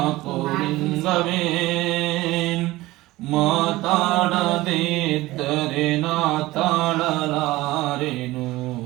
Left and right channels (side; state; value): left; quieter; 18.6 dB